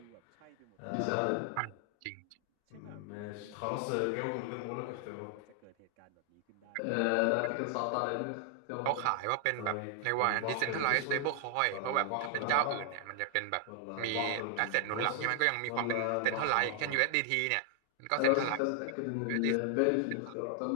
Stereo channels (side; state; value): both; different; correlation 0.00